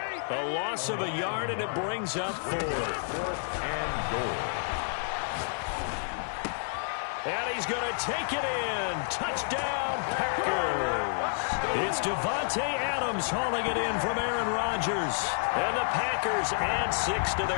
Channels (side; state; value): right; silent; digital silence